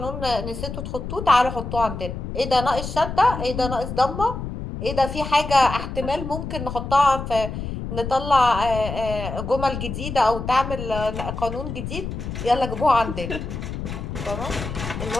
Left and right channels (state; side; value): noise; left; rumble, 6 dB below the sound